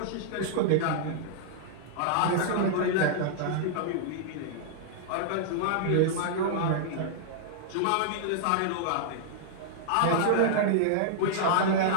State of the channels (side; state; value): both; different; correlation -0.01